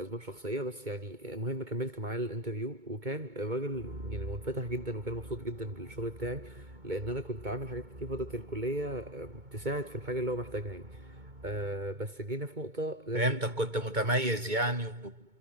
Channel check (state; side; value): late; left; 2.2 ms